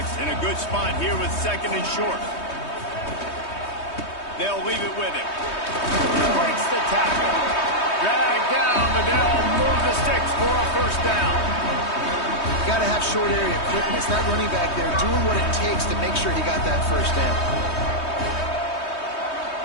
in a good spot here with 2nd and short. They'll leave it with him. Breaks the tackle. Drag down, but they'll move the sticks for a first down. You got to have short area quickness. That running back there doing what it takes to make sure he got that first down.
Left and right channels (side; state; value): right; late; 3.2 ms